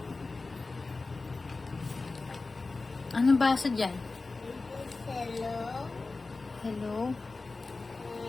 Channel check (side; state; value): right; quieter; 3.7 dB